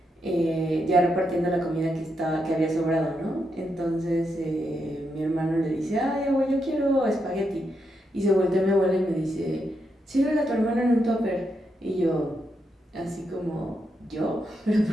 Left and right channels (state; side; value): normal; both; correlation 0.82